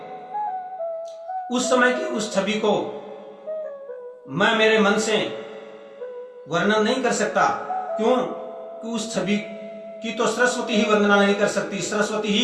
उस समय की उस छवि को मैं मेरे मन से वर्णन नहीं कर सकता। क्यों? कि उस छवि की तो सरस्वती ही वर्णना नहीं कर सकती, सरस्वती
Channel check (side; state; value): both; identical; correlation 1.00